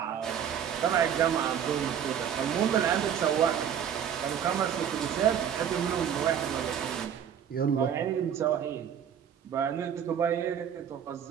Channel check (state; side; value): quieter; left; 8.8 dB